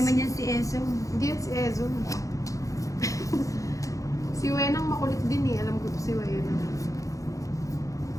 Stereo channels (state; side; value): late; right; 0.16 ms